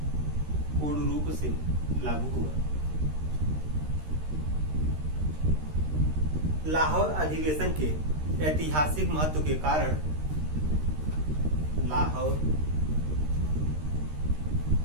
पूर्ण रूप से लागू हुआ। लाहौर अधिवेशन के ऐतिहासिक महत्व के कारण, लाहौर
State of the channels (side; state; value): left; late; 13 ms